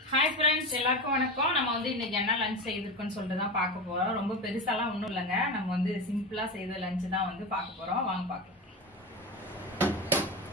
hi friends எல்லாருக்கும் வணக்கம் நம்ம வந்து இன்னைக்கு என்ன லஞ்ச் செய்திருக்கோம்னு சொல்லிட்டு தான் பார்க்க போறோம் ரொம்ப பெருசாலாம் ஒண்ணும் இல்லங்க நம்ம வந்து சிம்பிளா செய்த லஞ்ச் தான் வந்து பார்க்க போறோம் வாங்க பார்க்கலாம்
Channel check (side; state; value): both; normal; correlation 0.21